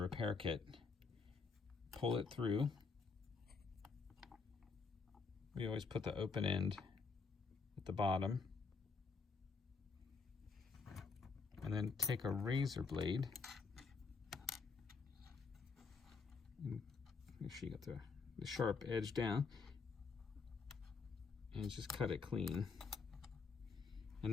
repair kit, pull it through. We always put the open end at the bottom, and then take a razor blade. Make sure you got the sharp edge down, and just cut it clean.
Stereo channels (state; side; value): quieter; right; 4.7 dB